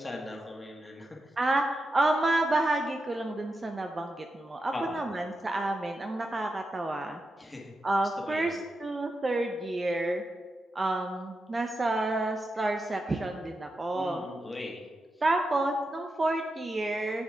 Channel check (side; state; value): both; normal; correlation 0.88